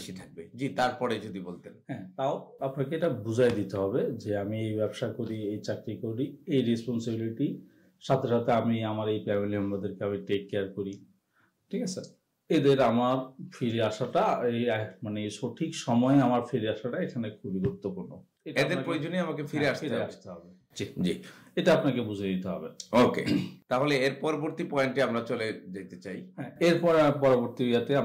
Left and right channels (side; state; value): both; identical; correlation 1.00